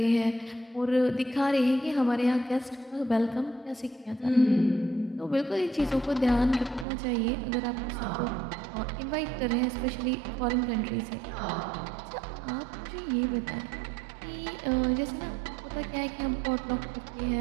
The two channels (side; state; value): left; drops out; at 6.9 s